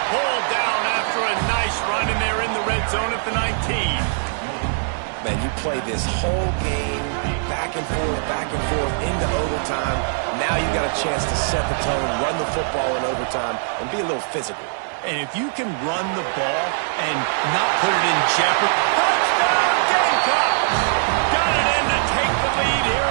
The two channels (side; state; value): left; silent; digital silence